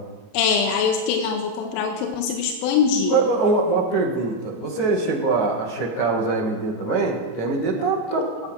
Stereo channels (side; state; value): right; late; 32 ms